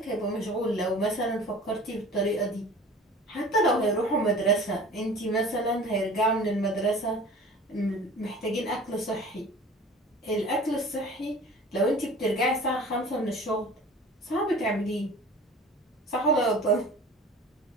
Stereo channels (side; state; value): both; normal; correlation 0.42